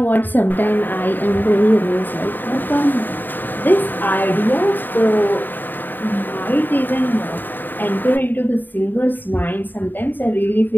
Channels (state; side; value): late; right; 0.091 ms